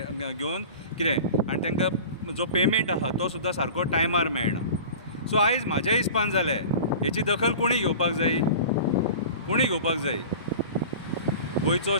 घेवन कितें आनी तांकां जो पेमेंट आहा तो सुद्दां सारको टायमार मेळना. सो आयज म्हाज्या हिसपान जालें हेची दखल कोणी घेवपाक जाय, कोणी घेवपाक जाय. गोंयचो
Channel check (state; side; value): inverted; both; correlation -0.37